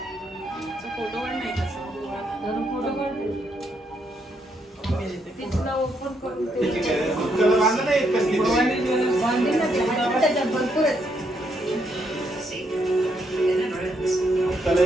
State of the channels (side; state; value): both; normal; correlation 0.76